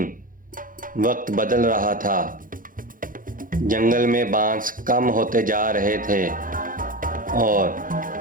वक्त बदल रहा था, जंगल में बांस कम होते जा रहे थे और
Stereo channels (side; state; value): left; late; 0.40 ms